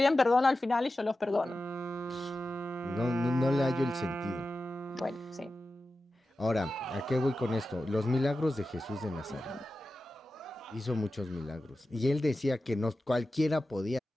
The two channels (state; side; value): normal; both; correlation 0.93